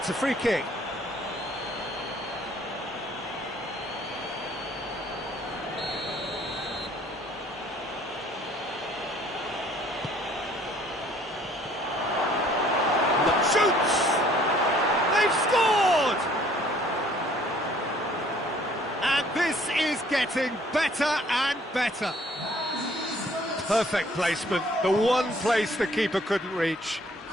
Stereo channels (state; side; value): normal; both; correlation 0.58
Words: a free kick. Shoots! They've scored! And this is getting better and better. Perfect placement, the one place the keeper couldn't reach.